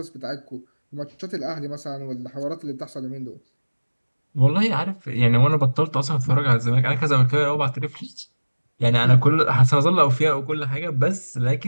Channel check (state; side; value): inverted; both; correlation -1.00